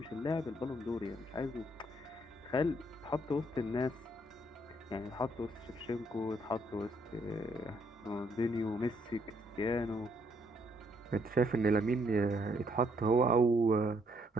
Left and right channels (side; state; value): both; normal; correlation 0.70